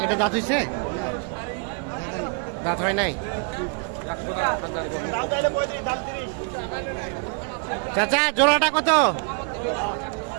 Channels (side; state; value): left; quieter; 37.3 dB